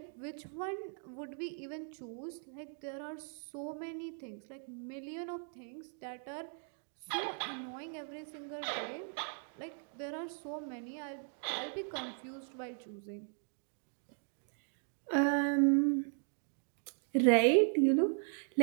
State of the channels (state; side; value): silent; left; 53 dB below the other